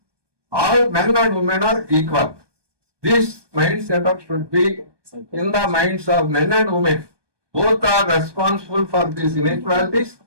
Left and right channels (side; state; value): left; late; 1.2 ms